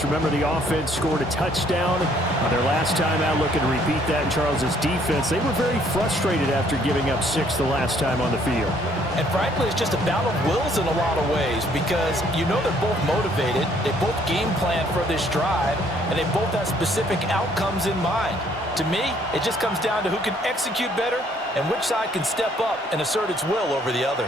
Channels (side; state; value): both; normal; correlation 0.64